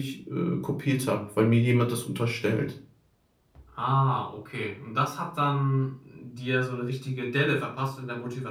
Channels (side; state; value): both; identical; correlation 1.00